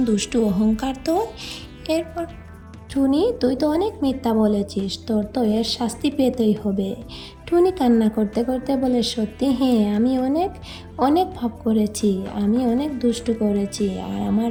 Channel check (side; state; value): both; identical; correlation 1.00